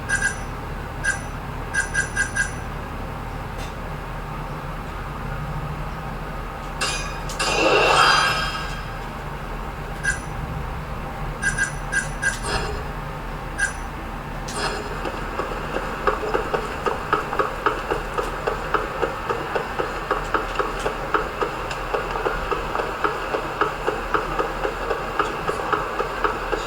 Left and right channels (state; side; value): identical; both; correlation 1.00